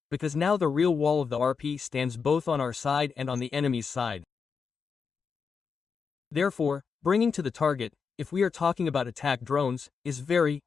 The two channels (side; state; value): right; quieter; 5.7 dB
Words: because now the real wall of the RP stands both on our side and on the enemy's side. Therefore, bringing to the target, if we are talking about attack drones, is very,